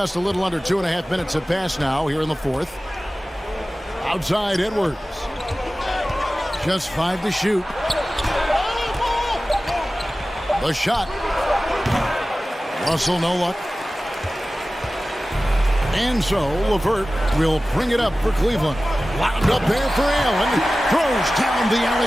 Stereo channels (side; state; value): both; normal; correlation 0.96